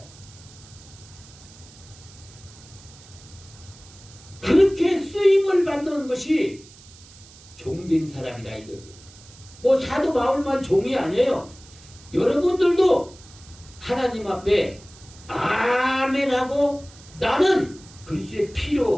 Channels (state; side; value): noise; right; hiss, 22 dB below the sound